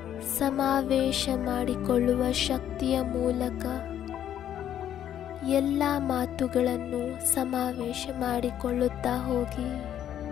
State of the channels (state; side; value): quieter; right; 10.6 dB